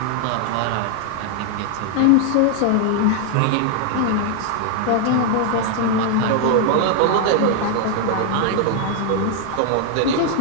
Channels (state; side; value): different; both; correlation 0.00